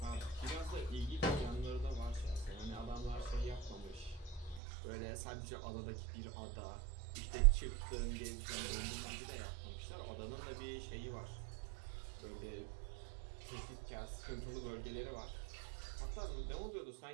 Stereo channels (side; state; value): left; drops out; at 4.6 s